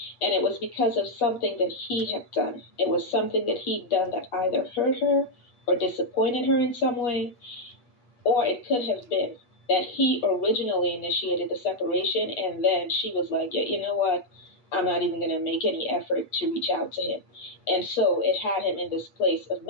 And it was because of something that he had done. It was something that he'd done that either hurt her or disappointed her in some way, or it could have been that he originally initiated the separation and then she was like, yeah, you know what? I'm not even going to make any effort to reach out to him. And so it had him in this place of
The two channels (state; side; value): late; right; 8.2 ms